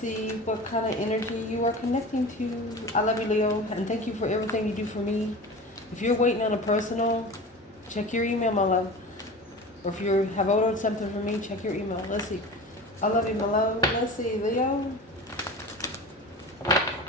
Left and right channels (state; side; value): normal; both; correlation 0.33